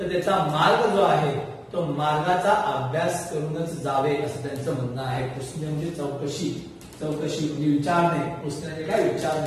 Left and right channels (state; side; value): identical; both; correlation 1.00